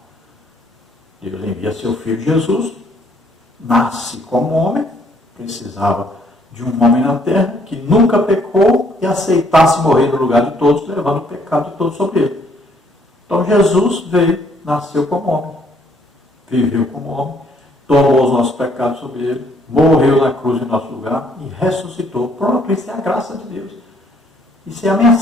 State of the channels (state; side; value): normal; both; correlation 0.66